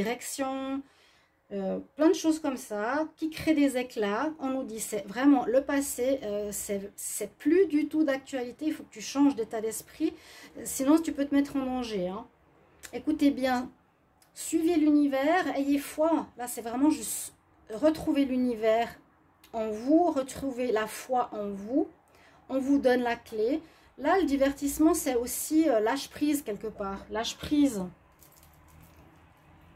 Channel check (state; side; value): identical; both; correlation 1.00